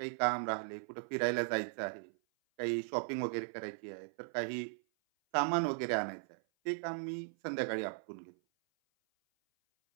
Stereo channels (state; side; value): silent; left; 53 dB below the other